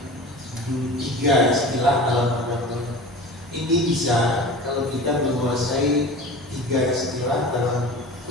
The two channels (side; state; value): both; normal; correlation 0.36